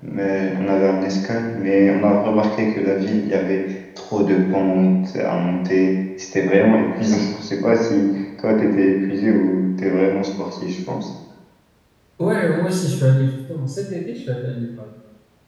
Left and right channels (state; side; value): identical; both; correlation 1.00